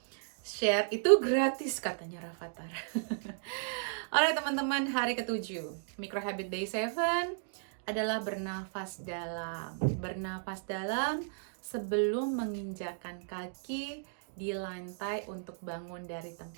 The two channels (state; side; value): silent; left; digital silence